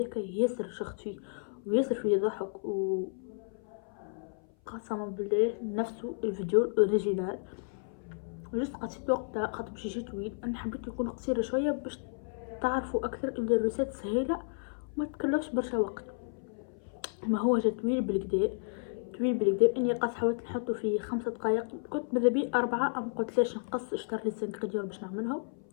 ياسر شخت فيه وياسر فيه ضحك و قسما بالله نفسه الفيديو الاوريجينال جست قصيت وقتها خاطر باش يجي طويل انا حبيت يكون قصير شويه باش تعرفوا اكثر ان الريسات سهيله وما تكلفش برشا وقت ما هو جا طويل بالكدا طويل بالكدا. اني قاس حاولت نحطه في 5 دقائق، كنت ماذا بي 4، ام قلت ليش نقص. اشتريت لي الزنكريدير باش نعملهم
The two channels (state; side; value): silent; right; 56 dB below the other